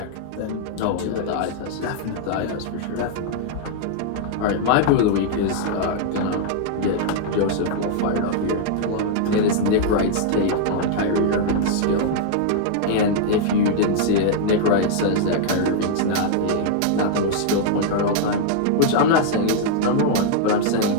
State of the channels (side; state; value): both; different; correlation -0.01